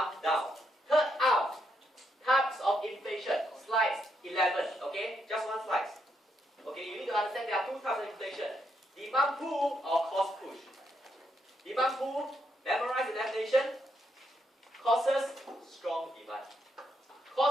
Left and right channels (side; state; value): both; normal; correlation 0.78